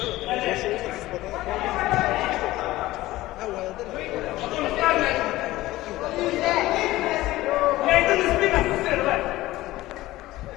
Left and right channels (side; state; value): right; quieter; 17.1 dB